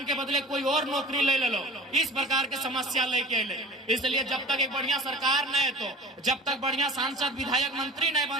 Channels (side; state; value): both; normal; correlation 0.40